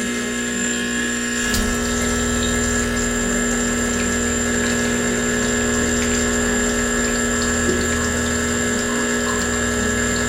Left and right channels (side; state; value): both; identical; correlation 1.00